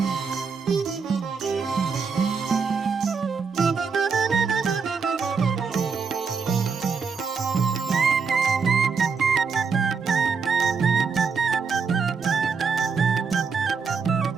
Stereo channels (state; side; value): quieter; left; 5.4 dB